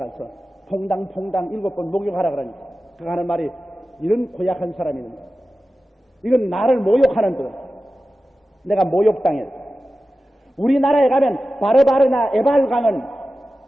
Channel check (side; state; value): both; normal; correlation 0.94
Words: 퐁당퐁당 7번 목욕하라 그러니까 그 하는 말이 이런 고약한 사람이 있는 거야. 이건 나를 모욕하는 거야. 내가 모욕당했다. 우리나라에 가면 바르바르나 에발강은